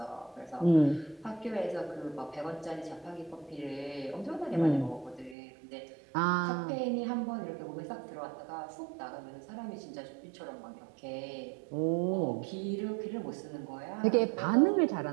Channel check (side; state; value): left; drops out; at 5.4 s